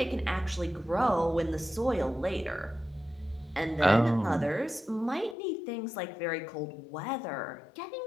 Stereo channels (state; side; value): drops out; right; at 5.4 s